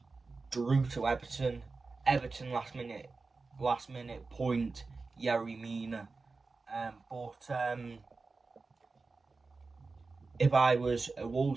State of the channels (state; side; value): quieter; left; 4.0 dB